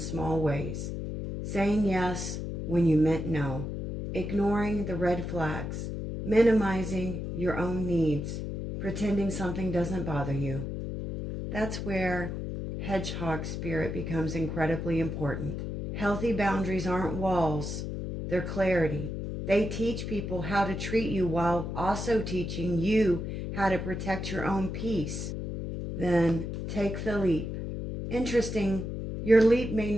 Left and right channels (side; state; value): left; noise; hum, 5 dB below the sound